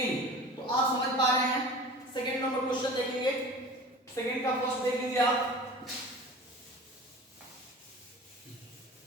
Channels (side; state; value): both; normal; correlation 0.38